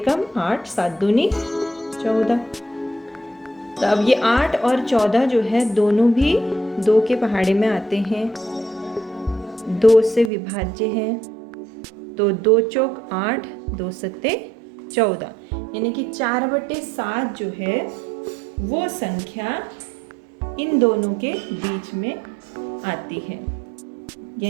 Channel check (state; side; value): drops out; left; at 10.3 s